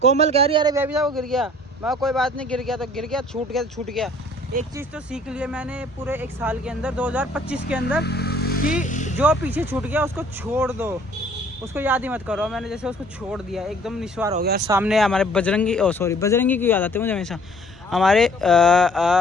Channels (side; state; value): both; normal; correlation 0.56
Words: कोमल कह रही है अरे बेबी साहब वो गिर गया। मैं कोई बात नहीं, गिर गया तो गिर गया, छूट गया तो छूट गया। एक चीज़ तो सीख लिया मैंने पूरे एक साल के अंदर, 2025 के अंदर, कि जो पीछे छूट गया उसको छोड़ दो, उसको याद ही मत करो। मैंने जैसे उसको छोड़ दिया, एकदम निस्वार हो गया। सामने हमारे बजरंगी, सॉरी बजरंगी की याद आती है मुझे हमेशा, हमारे